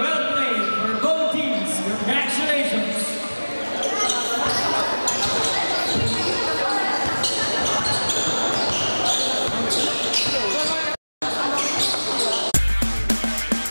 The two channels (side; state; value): both; inverted; correlation -1.00